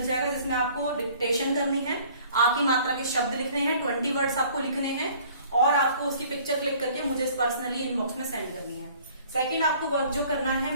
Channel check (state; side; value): inverted; both; correlation -0.53